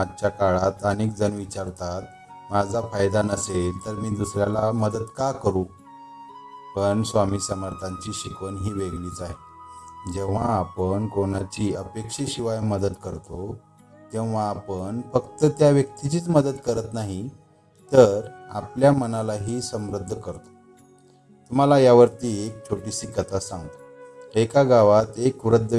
काळात अनेक जण विचारतात, माझा फायदा नसेल तर मी दुसऱ्याला मदत का करू? पण स्वामी समर्थांची शिकवण ही वेगळीच आहे। जेव्हा आपण कोणाची अपेक्षेशिवाय मदत करतो, तेव्हा आपण फक्त त्या व्यक्तीचीच मदत करत नाही, तर आपल्या मनालाही समृद्ध करतो। तुम्हाला यावरती एक छोटीशी कथा सांगतो। एका गावात एक वृद्ध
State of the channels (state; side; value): identical; both; correlation 1.00